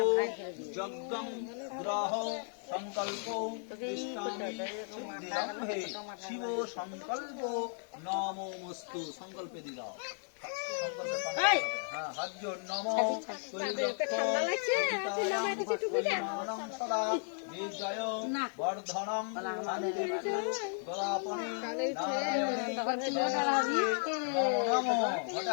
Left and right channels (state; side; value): silent; right; 55 dB below the other